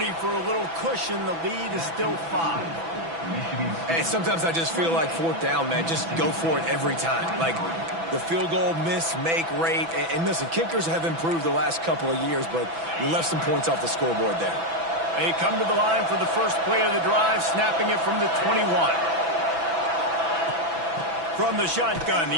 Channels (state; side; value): late; left; 6.0 ms